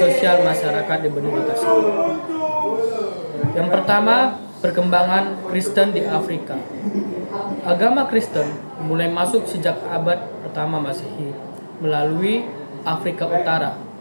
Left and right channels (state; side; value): inverted; both; correlation -1.00